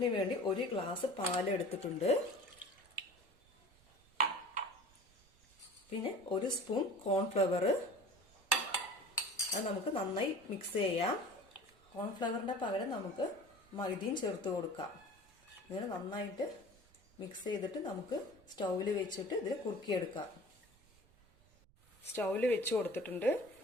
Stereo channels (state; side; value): noise; right; rumble, 29 dB below the sound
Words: 1 ഗ്ലാസ് പാൽ എടുത്തിട്ടുണ്ട്. പിന്നെ 1 സ്പൂൺ കോൺഫ്ലവർ. അത് നമുക്ക് നന്നായി മിക്സ് ചെയ്യാം. കോൺഫ്ലവറിന്റെ പകരം നമുക്ക് മൈദയും ചേർത്ത് കൊടുക്കാം. ഇങ്ങനെ നന്നായിട്ട് മിക്സ് ചെയ്തിട്ട് നമുക്ക് സ്റ്റൗവിൽ വെച്ചിട്ട് ഇതിൽ കുറുക്കിയെടുക്കാം. സ്റ്റൗവിൽ വെച്ച് കൊടുത്തിട്ടുണ്ട്.